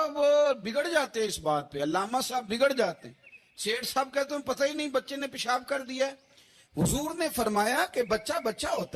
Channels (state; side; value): identical; both; correlation 1.00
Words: بگڑ جاتے ہیں اس بات پہ. علامہ صاحب بگڑ جاتے ہیں. سیٹھ صاحب کہتے ہیں پتہ ہی نہیں بچے نے پیشاب کر دیا ہے. حضور نے فرمایا کہ بچہ بچہ